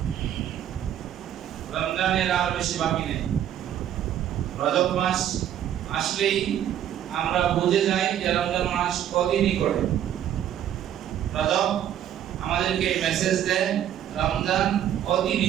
রমজানের আর বেশি বাকি নেই। রজব মাস আসলেই আমরা বুঝে যাই যে রমজান মাস কদিনই করে। রজব আমাদেরকে মেসেজ দেয় রমজান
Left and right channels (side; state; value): left; quieter; 10.6 dB